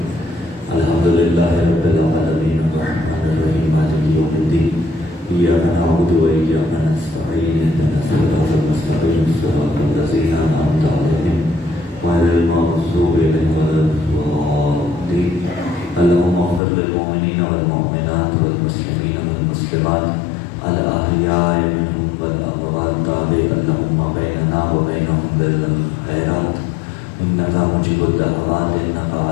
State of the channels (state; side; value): drops out; right; at 16.6 s